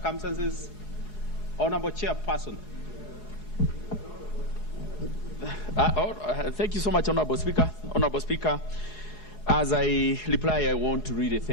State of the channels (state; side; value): late; right; 4.8 ms